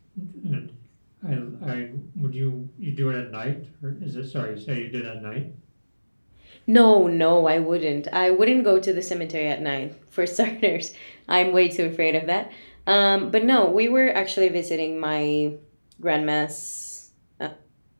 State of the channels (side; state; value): both; inverted; correlation -1.00